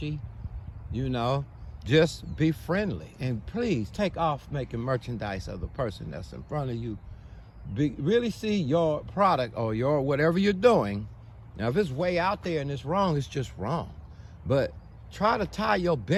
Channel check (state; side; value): identical; both; correlation 1.00